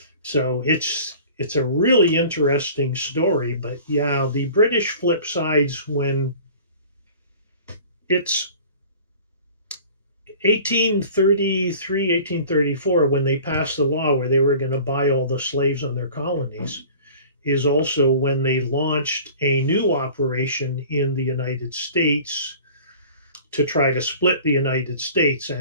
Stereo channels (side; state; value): both; inverted; correlation -0.44